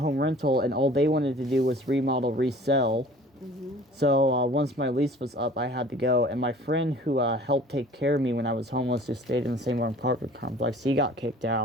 Rental, and all they wanted to do was remodel, resell. So once my lease was up, I had to go. And my friend who helped take care of me when I was homeless, who stayed in the same apartment complex, he got kicked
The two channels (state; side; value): normal; both; correlation 0.48